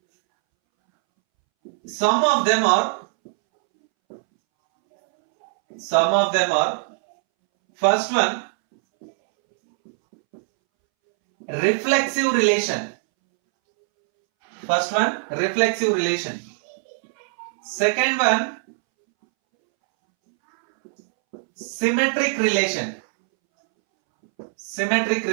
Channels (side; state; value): left; silent; 64 dB below the other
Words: Some of them are first one, reflexive relation. Second one, symmetric relation.